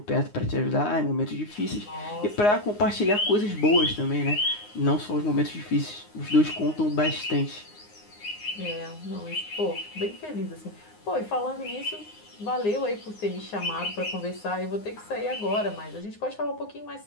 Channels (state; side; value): late; right; 9.6 ms